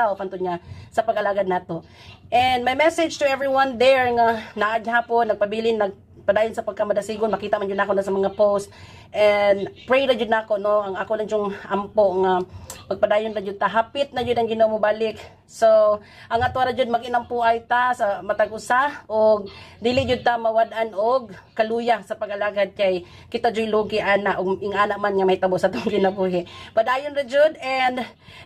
hantud nga sa pag-alagad nato. And my message to everyone there nga naa gyapon nagpabilin padayon sa pagkamadasigon, makita man jud nako na sa mga post, and pray na jud nako, no, ang ako lang yung ampo nga pagpadayon na jud ta, hapit na jud ang Ginoo mo balik. So ang ato ra jud mag-inampuay ta sa matag usa og dili jud ta mawad-an og kaluya sa pag-alagad kay kita jud lugi ana og ingana man nga mahitabo sa tong kinabuhi. Padayon ra jud, and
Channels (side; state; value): both; identical; correlation 1.00